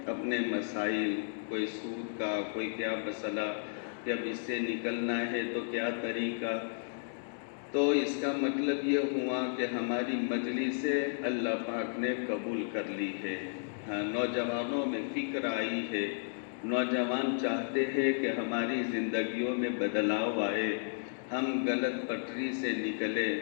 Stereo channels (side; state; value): right; silent; digital silence